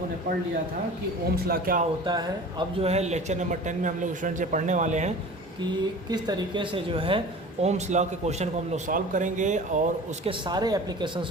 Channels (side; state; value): both; normal; correlation 0.40